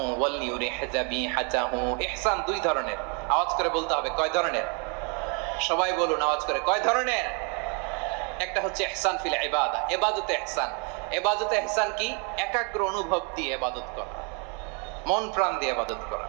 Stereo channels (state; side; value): quieter; left; 36.1 dB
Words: ওয়ালিয়ুরিহ যাবিহাতাহু। ইহসান দুই ধরনের। আওয়াজ করে বলতে হবে, কয় ধরনের? সবাই বলুন আওয়াজ করে, কয় ধরনের? একটা হচ্ছে ইহসান ফিল ইবাদা, ইবাদতে ইহসান। ইবাদতে ইহসান কি? একাগ্র অনুভব দিয়ে ইবাদত করা, মন প্রাণ দিয়ে ইবাদত করা।